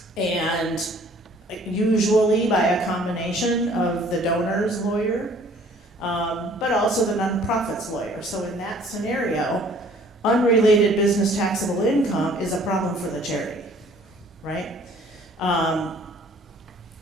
and usually by a combination of the donor's lawyer, but also the nonprofit's lawyer. So in that scenario, unrelated business taxable income is a problem for the charity, right?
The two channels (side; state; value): both; normal; correlation 0.55